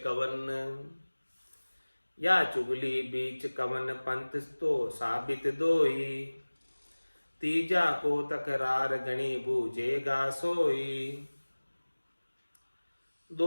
कवन। या चुगली बीच कवन, पंथ तो साबित दोई। तीजा को तकरार गणी, बूझेगा सोई।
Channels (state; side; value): inverted; both; correlation -1.00